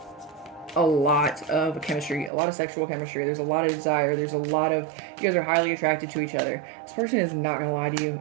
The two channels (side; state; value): left; drops out; at 2.3 s